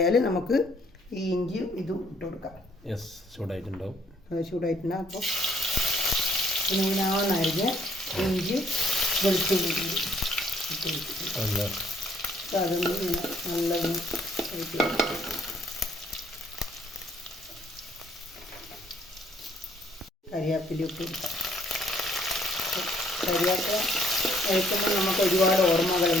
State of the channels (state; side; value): normal; both; correlation 0.64